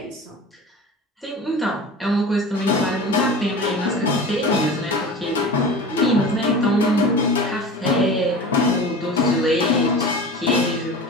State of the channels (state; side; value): normal; both; correlation 0.35